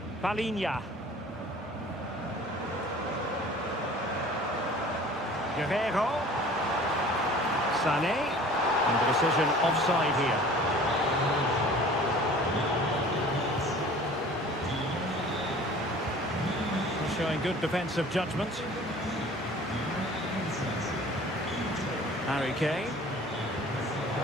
Palinha. Guerrero. Sané. And the decision offside here. Showing good defensive judgment. Harry Kane.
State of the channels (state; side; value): normal; both; correlation 0.46